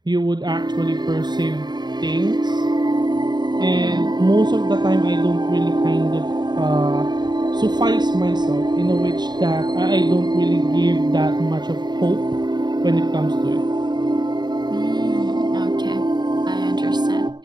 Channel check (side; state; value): left; late; 0.21 ms